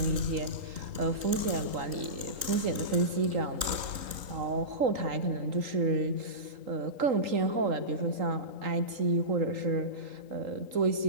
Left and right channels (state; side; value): late; left; 3.8 ms